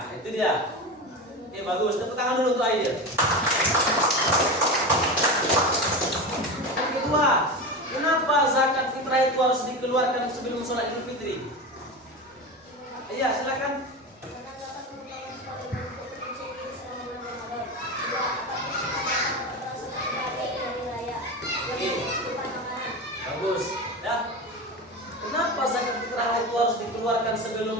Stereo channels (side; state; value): both; normal; correlation 0.23